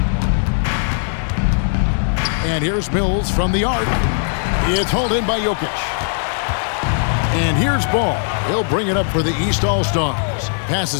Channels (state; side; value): silent; right; digital silence